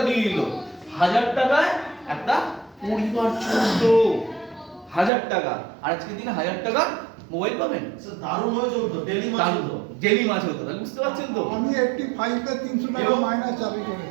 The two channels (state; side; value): drops out; left; at 5.1 s